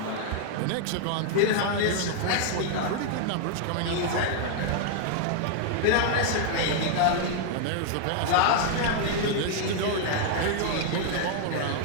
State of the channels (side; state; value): both; different; correlation 0.00